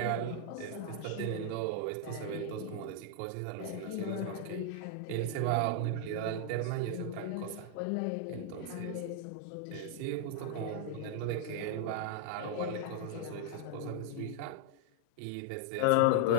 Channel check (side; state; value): both; different; correlation 0.00